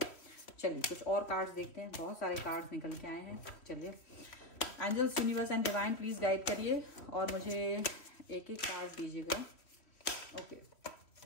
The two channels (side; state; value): right; late; 3.1 ms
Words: चलिए कुछ और कार्ड्स देखते हैं, बहुत सारे कार्ड्स निकल के आए हैं। चलिए angels, universe and divine please guide करिए और मुझे एक एक कार्ड दीजिएगा। ओके,